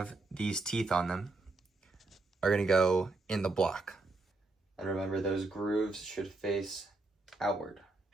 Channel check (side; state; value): left; quieter; 3.3 dB